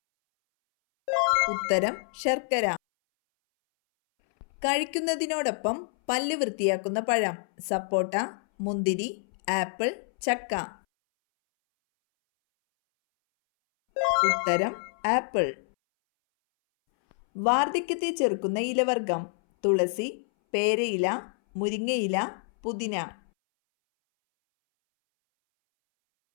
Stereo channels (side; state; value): right; silent; 60 dB below the other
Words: ഉത്തരം ശർക്കര. കഴിക്കുന്നതിനോടൊപ്പം പല്ല് വൃത്തിയാക്കുന്ന പഴം: സപ്പോട്ട, മുന്തിരി, ആപ്പിൾ, ചക്ക. ഉത്തരം ആപ്പിൾ. വാർദ്ധക്യത്തെ ചെറുക്കുന്ന ഇലവർഗം: തുളസി, പേരയില, മുരിങ്ങയില, പുതിന.